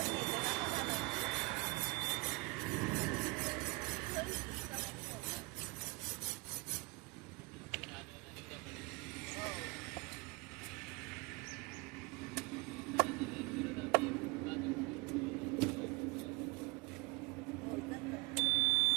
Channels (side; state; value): left; quieter; 26.8 dB